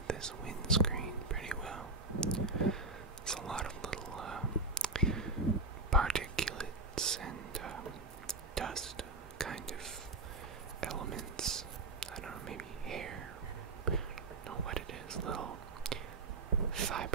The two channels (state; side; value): quieter; left; 3.3 dB